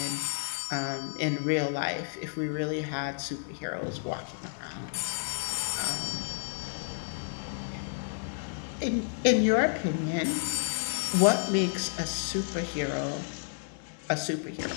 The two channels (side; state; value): right; silent; digital silence